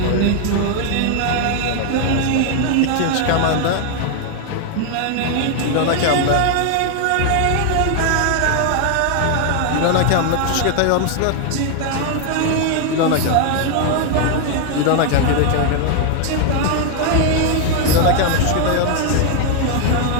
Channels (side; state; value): both; different; correlation 0.00